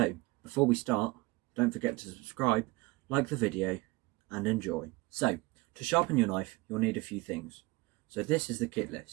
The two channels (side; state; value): left; quieter; 23.1 dB